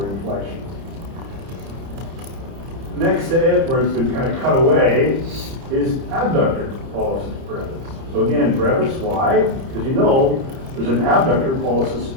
in flexion. Next to it, where it's been kind of cut away, is abductor pollicis brevis. So again, brevis, why? Because you know there's an abductor pollicis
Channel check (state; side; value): late; left; 30 ms